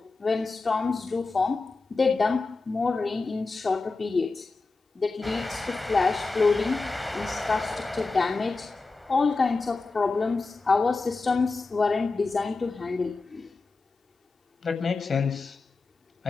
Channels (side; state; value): right; quieter; 3.8 dB